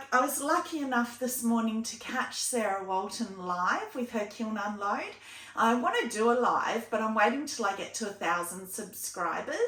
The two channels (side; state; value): both; identical; correlation 1.00